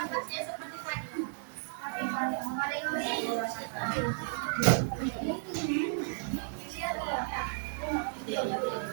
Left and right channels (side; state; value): left; silent; 55 dB below the other